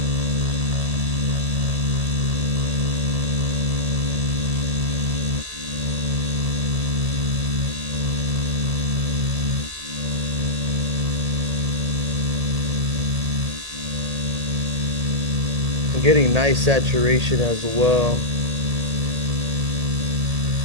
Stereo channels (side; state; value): left; late; 1.8 ms